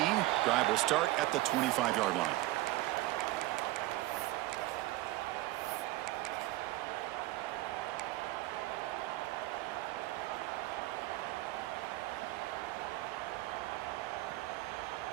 Drive will start at the 25-yard line.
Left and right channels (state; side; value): quieter; left; 17.7 dB